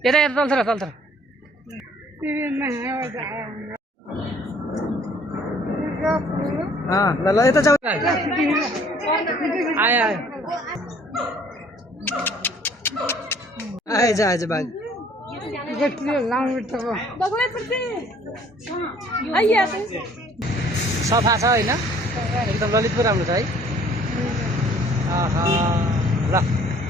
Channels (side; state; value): both; normal; correlation 0.57